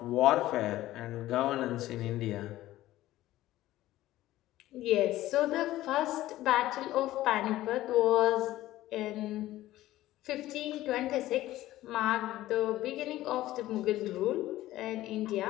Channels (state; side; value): quieter; right; 15.4 dB